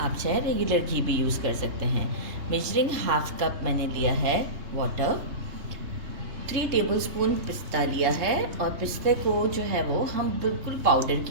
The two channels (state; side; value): late; left; 3.3 ms